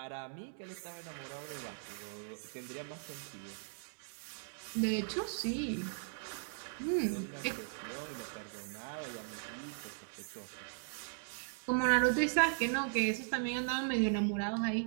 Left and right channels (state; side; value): silent; left; digital silence